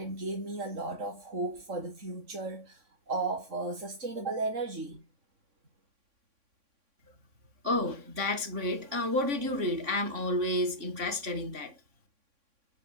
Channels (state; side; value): late; left; 3.6 ms